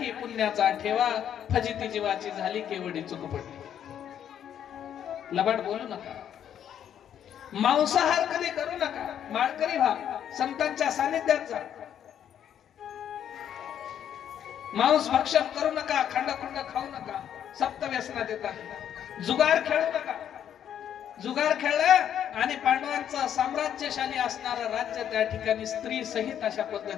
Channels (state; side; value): quieter; right; 9.6 dB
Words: पुण्याचा ठेवा, फजिती जीवाची झाली केवढी चूक पडली. लबाड बोलू नका. मांसाहार कधी करू नका. माळकरी व्हा, संतांच्या सानिध्यात जा. मांस भक्षण करू नका, खंड खाऊ नका. 7 व्यसनात येतात. जुगार खेळू नका. जुगार खेळलं आणि पांडवांचं साम्राज्यशाली असणारं राज्य त्या ठिकाणी स्त्री सहित अशा